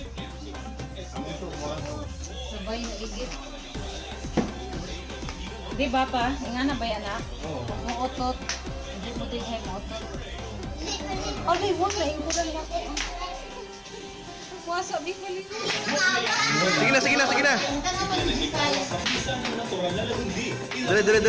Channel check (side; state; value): both; identical; correlation 1.00